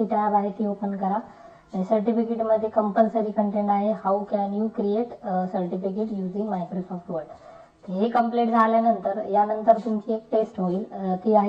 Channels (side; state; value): both; identical; correlation 1.00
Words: टॅब आहे ती ओपन करा. आणि सर्टिफिकेट मध्ये कंपल्सरी कंटेंट आहे how can you create certificate using Microsoft word. हे कंप्लीट झाल्यानंतर यानंतर तुमची एक टेस्ट होईल, ती